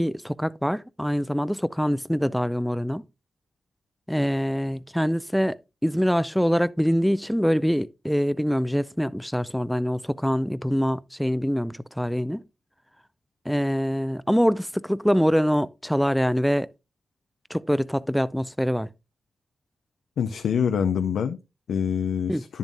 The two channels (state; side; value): normal; both; correlation 0.97